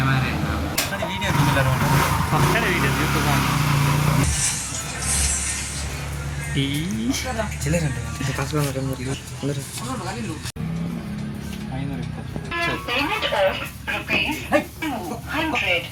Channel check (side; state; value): both; identical; correlation 1.00